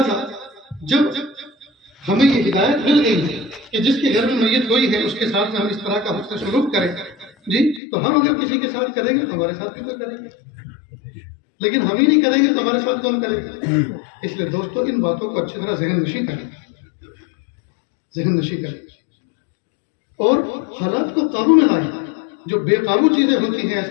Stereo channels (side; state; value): right; drops out; at 7.8 s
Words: جب ہمیں یہ ہدایت مل گئی ہے کہ جس کے گھر میں میت ہوئی ہے اس کے ساتھ میں ہم اس طرح کا حسن سلوک کریں جی، تو ہم اگر کسی کے ساتھ کریں گے تو ہمارے ساتھ بھی کوئی کرے گا، لیکن ہم ہی نہیں کریں گے تو ہمارے ساتھ کون کرے گا؟ اس لیے دوستو ان باتوں کو اچھی طرح ذہن نشی کریں اور حالات کو قابو میں لائیں۔ جو بے قابو چیزیں ہوتی ہیں